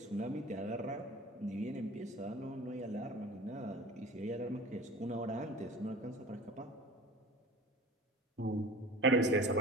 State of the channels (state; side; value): normal; both; correlation 0.40